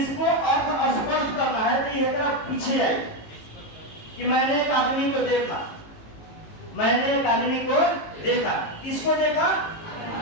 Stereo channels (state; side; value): late; right; 18 ms